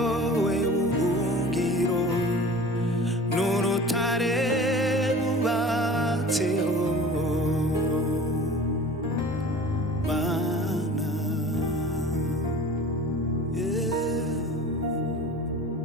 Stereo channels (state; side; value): normal; both; correlation 0.42